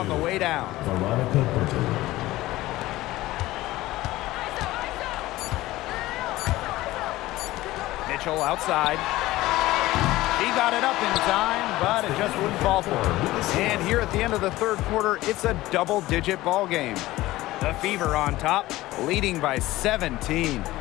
the way down. Veronica Burton. Mitchell outside. He got it up in time, but it just wouldn't fall for her. And here at the end of the third quarter, it's a double-digit ball game. The Fever on top, leading by 17.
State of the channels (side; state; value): right; quieter; 17.4 dB